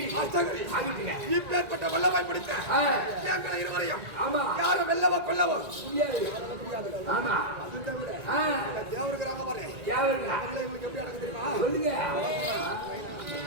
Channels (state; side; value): late; left; 1.9 ms